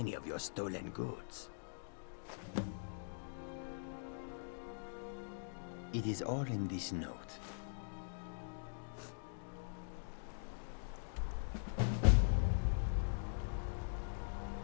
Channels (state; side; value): silent; right; digital silence